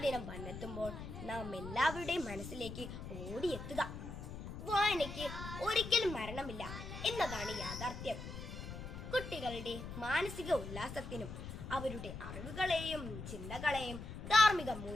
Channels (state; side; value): noise; left; rumble, 9 dB below the sound